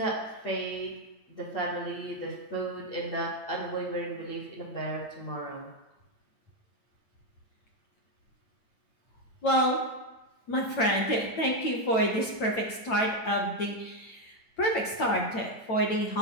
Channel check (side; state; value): right; late; 9.0 ms